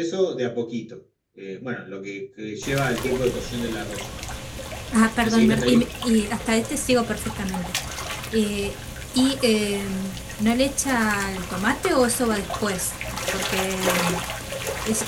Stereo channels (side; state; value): both; identical; correlation 1.00